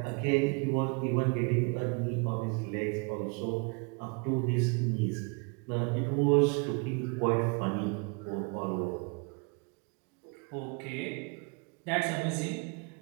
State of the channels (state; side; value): quieter; left; 33.2 dB